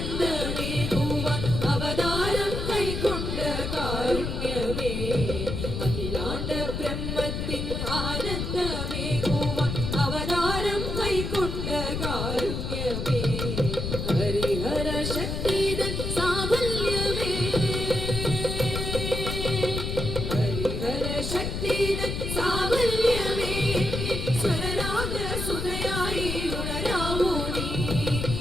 അവതാരം കൈക്കൊണ്ട കാരുണ്യമേ അഖിലാണ്ട ബ്രഹ്മത്തിൻ ആനന്ദമേകുവാൻ അവതാരം കൈക്കൊണ്ട കാരുണ്യമേ ഹരിഹര ശക്തിതൻ സാഫല്യമേ ഹരിഹര ശക്തിതൻ സാഫല്യമേ സ്വരരാഗ സുധയായി ഉണരാവൂ നീ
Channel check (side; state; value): left; noise; rumble, 3 dB below the sound